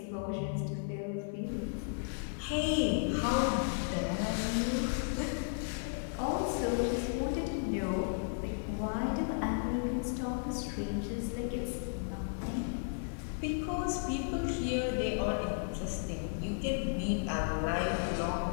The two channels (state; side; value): silent; right; digital silence